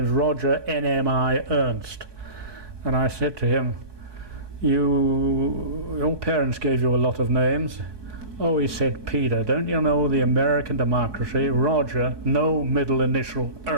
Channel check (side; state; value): left; late; 1.2 ms